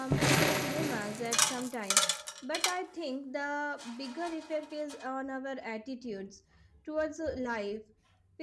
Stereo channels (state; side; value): identical; both; correlation 1.00